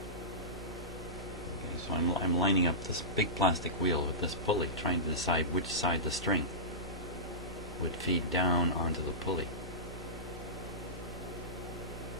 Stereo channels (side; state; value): both; normal; correlation -0.19